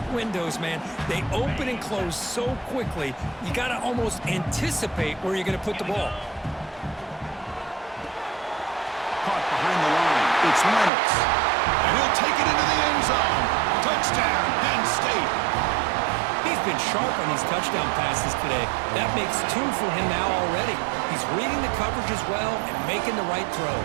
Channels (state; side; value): drops out; left; at 10.9 s